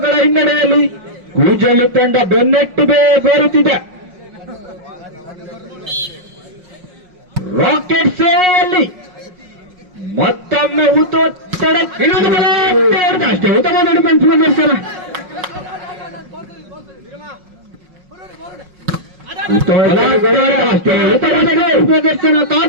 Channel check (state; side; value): late; left; 5.5 ms